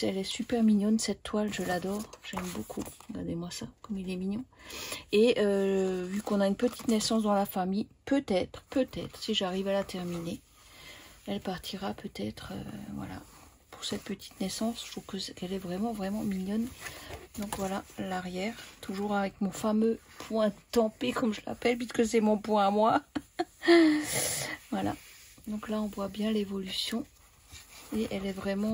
elle est super mignonne, cette toile, je l'adore, j'aime beaucoup. Regardez-moi ça, comme il est mignon. Et vu qu'on a une petite naissance dans la famille, peut-être, si j'arrive à la terminer, elle partira peut-être, voilà, pour cette petite naissance. Je trouve qu'elle est vraiment, vraiment mignonne. Donc voilà, l'arrière, toujours avec mon fameux point tempé, comme je l'appelle, puisque c'est mon point à moi. Voilà, donc là, on voit bien l'évolution. Et elle est vraiment,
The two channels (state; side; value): identical; both; correlation 1.00